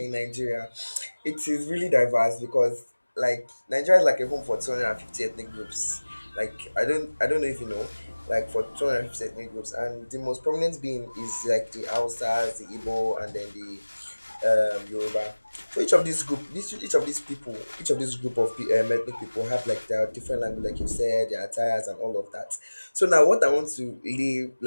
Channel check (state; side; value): inverted; both; correlation -1.00